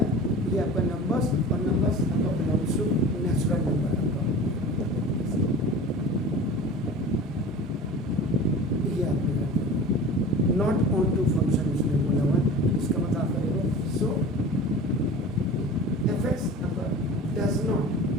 ये आपका नंबर्स और नंबर्स आपका बिलोंग्स टू नेचुरल नंबर आपका ये आपने नॉट ऑन टू फंक्शन उसने बोला हुआ, इसका मतलब आप करेंगे सो fx आपका does not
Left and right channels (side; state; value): both; normal; correlation 0.37